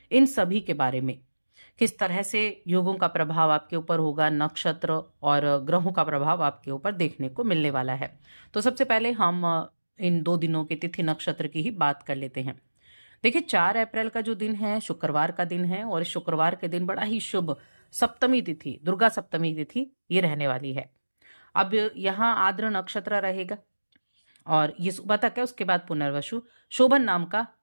इन सभी के बारे में, किस तरह से योगों का प्रभाव आपके ऊपर होगा, नक्षत्र और ग्रहों का प्रभाव आपके ऊपर देखने को मिलने वाला है। तो सबसे पहले हम इन 2 दिनों के तिथि नक्षत्र की ही बात कर लेते हैं। देखिए, 4 अप्रैल का जो दिन है शुक्रवार का दिन है और इस शुक्रवार के दिन बड़ा ही शुभ सप्तमी तिथि, दुर्गा सप्तमी तिथि ये रहने वाली है। अब यहाँ आद्र नक्षत्र रहेगा और ये सुबह तक है, उसके बाद पुनर्वसु शोभन नाम का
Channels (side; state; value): both; inverted; correlation -1.00